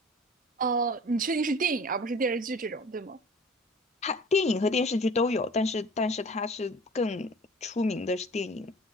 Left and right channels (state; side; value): normal; both; correlation 0.44